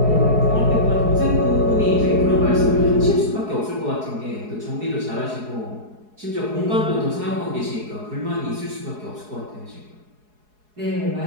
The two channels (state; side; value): late; left; 4.7 ms